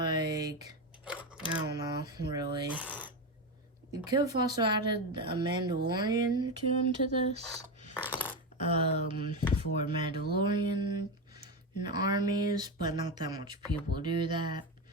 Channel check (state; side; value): normal; both; correlation 0.14